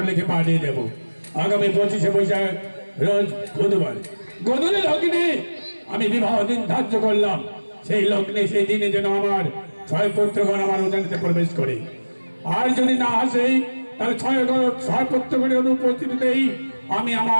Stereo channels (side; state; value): both; inverted; correlation -1.00